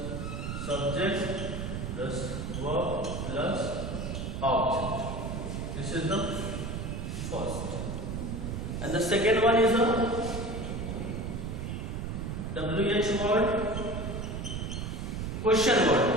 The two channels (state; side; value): noise; right; rumble, 4 dB below the sound